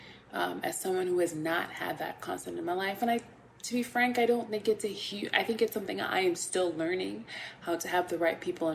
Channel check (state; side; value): identical; both; correlation 1.00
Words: as someone who has not had that constant in my life. And to be frank, I don't think it's I think it's something I am still learning, how to have the right people